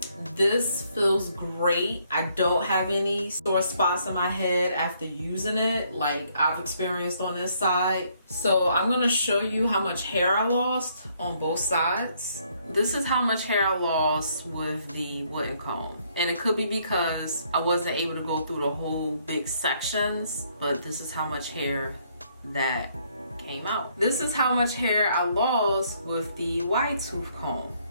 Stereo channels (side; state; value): both; inverted; correlation -0.69